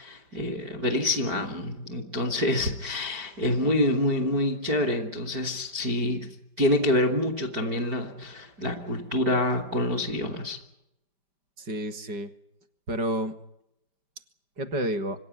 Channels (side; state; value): left; late; 5.1 ms